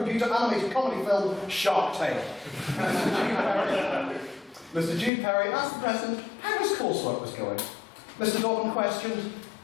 animated comedy film Shark Tale. Mr. Jude Perry asked the President how his coursework was going. Mr. Dobbin questioned,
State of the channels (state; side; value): drops out; right; at 5.1 s